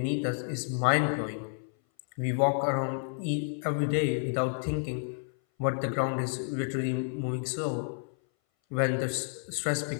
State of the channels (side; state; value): right; silent; 58 dB below the other